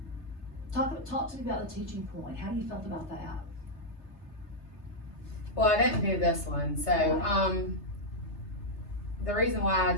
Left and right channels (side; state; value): right; late; 3.3 ms